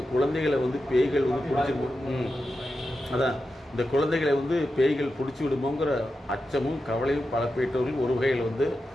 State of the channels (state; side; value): normal; both; correlation 0.90